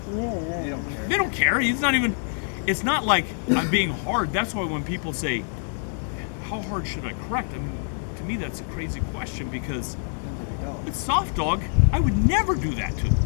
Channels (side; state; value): right; silent; 61 dB below the other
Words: Yeah. They don't care. They don't care. He's not even. It's not like I'm being hard. That's why when people say, "How hard should I correct?" I mean, to me that's a crazy question because Depends on your dog. it's soft dog. I would never do that to.